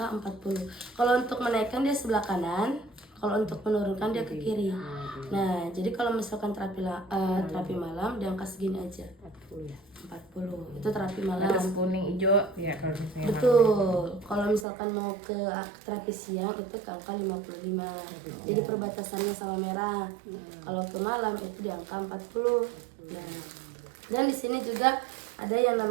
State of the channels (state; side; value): drops out; left; at 14.7 s